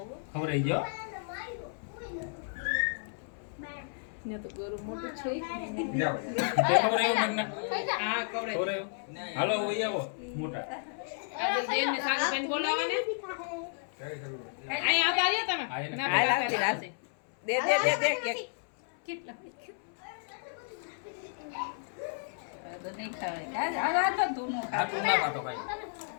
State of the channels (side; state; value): right; silent; 56 dB below the other